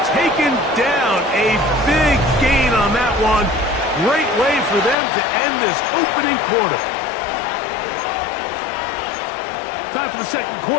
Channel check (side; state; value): right; drops out; at 5.0 s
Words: taken down. A big gain on that one. Great way for them to end this opening quarter. Time for the second